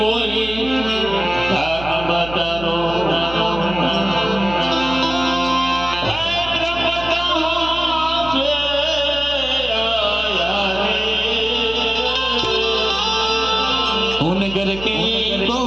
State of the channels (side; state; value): right; noise; hum, 12 dB below the sound